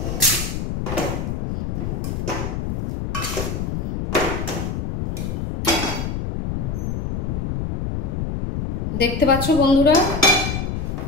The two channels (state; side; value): noise; left; rumble, 2 dB below the sound